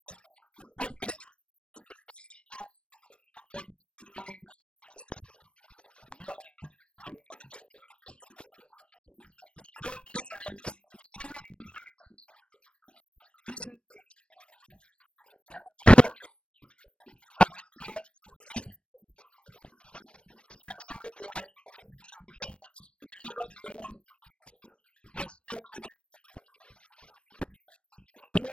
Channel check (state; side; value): late; right; 0.058 ms